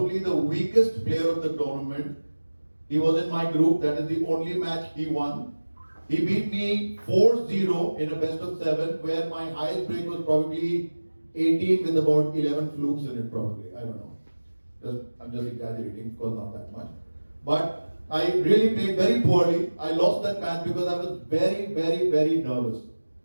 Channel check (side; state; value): both; inverted; correlation -1.00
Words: the weakest player of the tournament. He was in my group, that is the only match he won. He beat me 4-0 in a best of 7, where my highest break was probably 18 with about 11 flukes in it probably, I don't know. I'm just exaggerating, of course not that much. But I really played very poorly. I lost that match because I was very, very, very nervous.